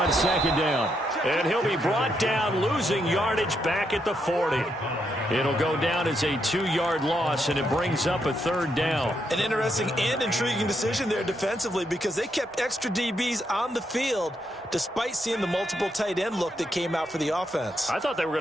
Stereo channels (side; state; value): both; normal; correlation 0.79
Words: 2nd down. And he'll be brought down, losing yardage back at the 40. It'll go down as a 2-yard loss, and it brings up a 3rd down. An interesting and intriguing decision there defensively, because they kept extra DBs on the field despite seeing the multiple tight end look that came out for the offense. I thought they were going